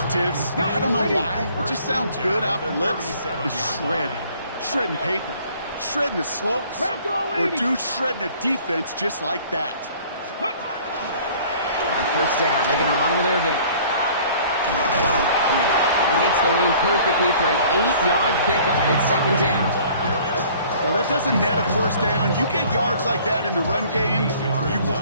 I don't know why, it just sounds good off the lips, is shred. Shredding paper. Shredding the slopes. Or dude shredding a defense just like that. On first down, they're going to run with Irving. He hits the lane perfectly for an 8-yard pickup. It's second down. Well, that doesn't net a first down. You get yards like that in the run game, you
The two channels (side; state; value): both; inverted; correlation -0.53